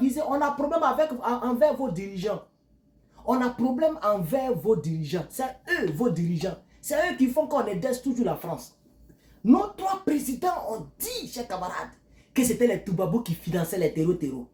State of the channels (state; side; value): identical; both; correlation 1.00